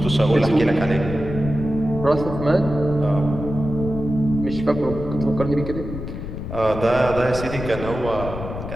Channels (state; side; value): noise; left; rumble, 8 dB below the sound